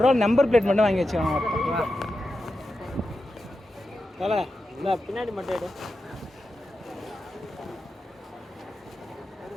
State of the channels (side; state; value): both; normal; correlation 0.90